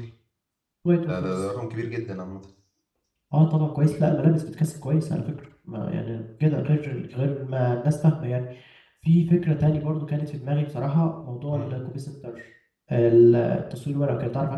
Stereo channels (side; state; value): both; identical; correlation 1.00